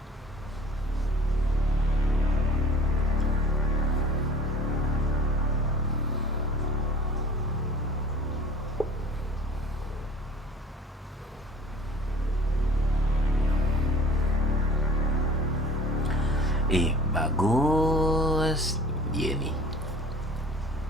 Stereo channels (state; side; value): normal; both; correlation 0.47